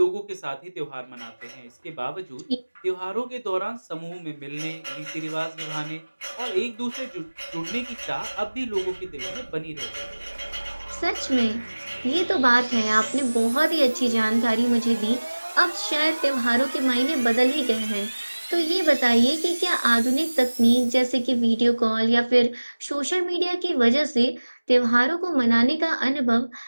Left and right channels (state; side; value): inverted; both; correlation -1.00